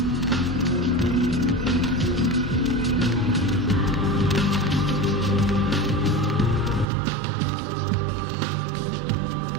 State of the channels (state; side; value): drops out; left; at 6.9 s